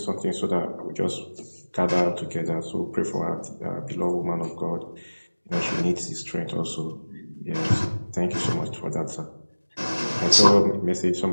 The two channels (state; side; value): inverted; both; correlation -1.00